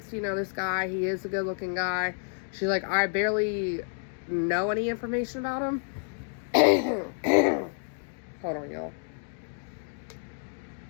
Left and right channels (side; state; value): right; silent; 58 dB below the other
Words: You know, this guy, he is a good looking guy. She's like, I barely know any information about him. Hold on, y'all.